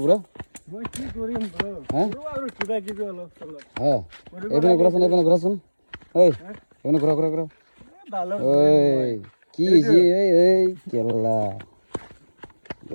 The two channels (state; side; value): inverted; both; correlation -1.00